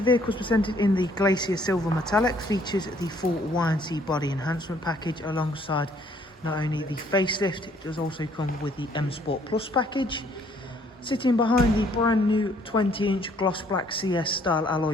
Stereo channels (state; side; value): normal; both; correlation 0.63